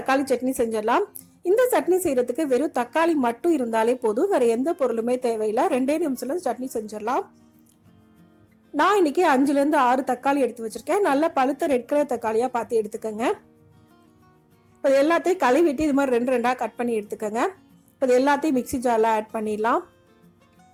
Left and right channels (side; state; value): both; identical; correlation 1.00